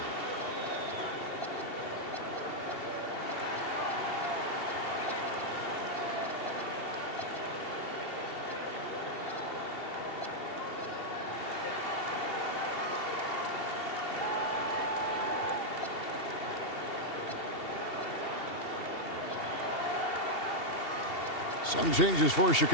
Some changes for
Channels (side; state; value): right; late; 2.7 ms